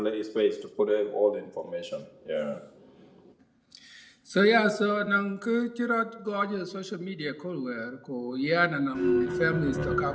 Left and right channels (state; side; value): identical; both; correlation 1.00